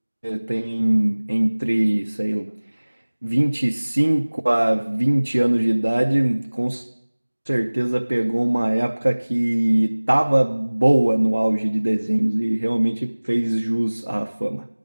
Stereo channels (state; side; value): inverted; both; correlation -1.00